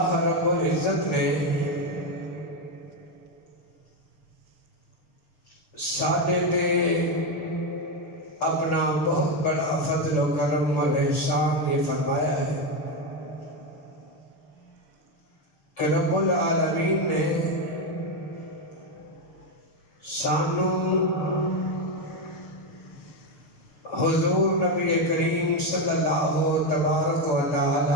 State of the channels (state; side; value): late; right; 6.2 ms